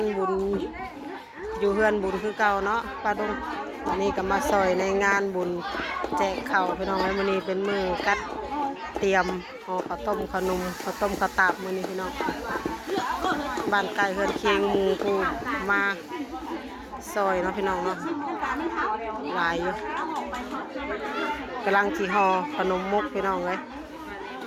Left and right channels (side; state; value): both; identical; correlation 1.00